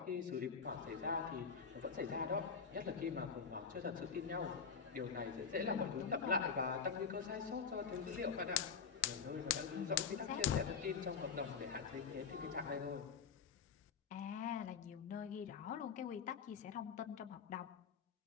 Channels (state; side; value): quieter; right; 6.1 dB